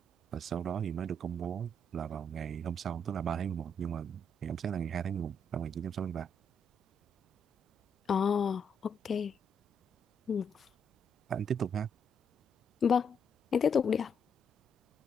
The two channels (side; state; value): both; normal; correlation 0.75